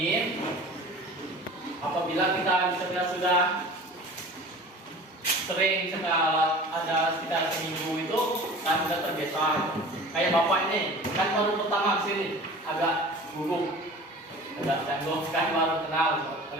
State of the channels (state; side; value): normal; both; correlation 0.41